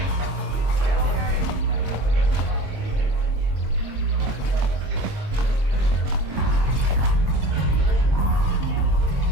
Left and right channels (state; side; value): late; left; 22 ms